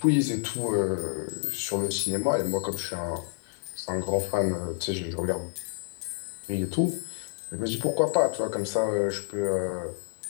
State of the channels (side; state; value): right; silent; digital silence